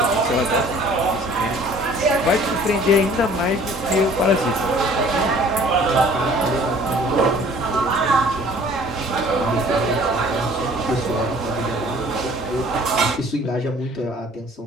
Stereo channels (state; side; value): normal; both; correlation 0.53